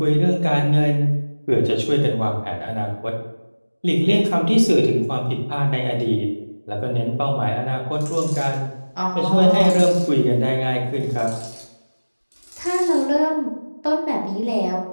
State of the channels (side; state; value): both; inverted; correlation -1.00